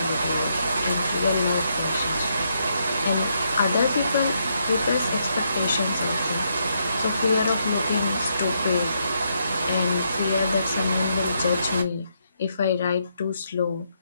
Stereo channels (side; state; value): both; inverted; correlation -0.77